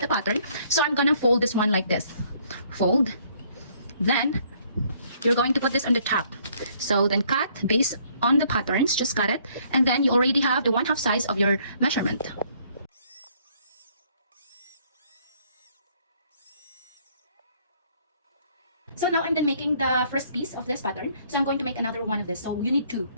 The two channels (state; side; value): inverted; both; correlation -0.64